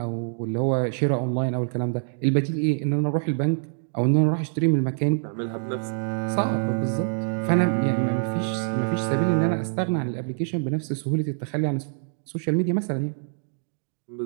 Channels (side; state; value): left; silent; digital silence